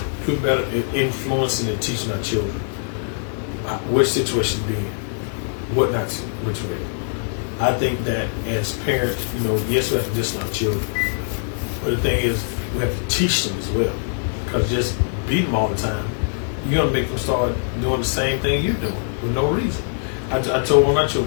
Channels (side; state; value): right; silent; digital silence